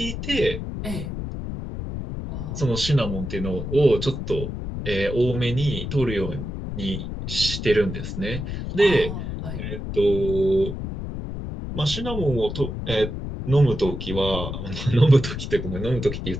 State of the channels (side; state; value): left; noise; rumble, 6 dB below the sound